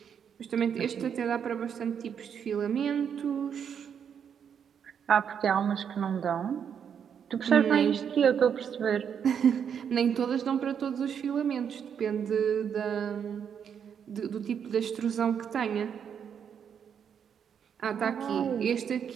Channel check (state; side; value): quieter; left; 7.8 dB